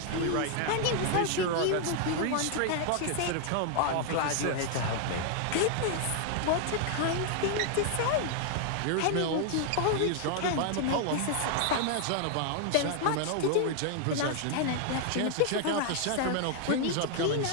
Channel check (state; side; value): different; both; correlation 0.00